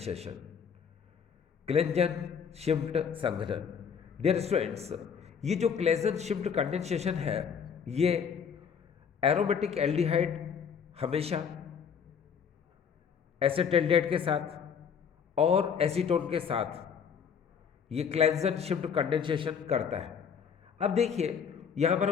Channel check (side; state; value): right; quieter; 7.0 dB